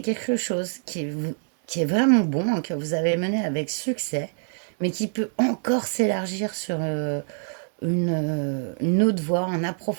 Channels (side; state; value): left; silent; 62 dB below the other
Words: quelque chose qui est vraiment bon, hein, que vous avez mené avec succès, mais qui peut encore s'élargir sur une autre voie, un